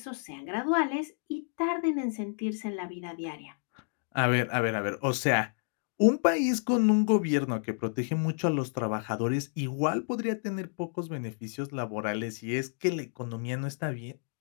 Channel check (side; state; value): right; silent; digital silence